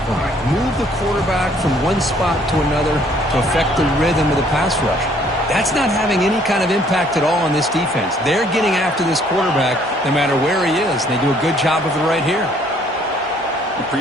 point, move the quarterback from one spot to another to affect the rhythm of the pass rush. That's not having any kind of impact at all on this defense. They're getting after this quarterback no matter where he is, and they do a good job of it right here. The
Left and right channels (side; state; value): both; normal; correlation 0.62